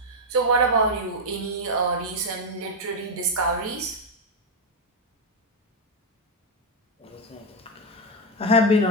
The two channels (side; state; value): both; normal; correlation 0.04